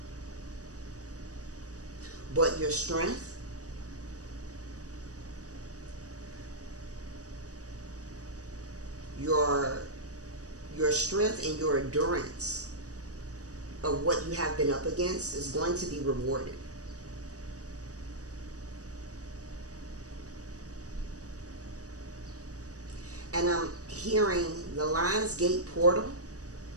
But your strength, your strength and your endurance of what you have been up against is going to be rewarded. And I'm hearing the Lionsgate portal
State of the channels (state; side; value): late; left; 0.66 ms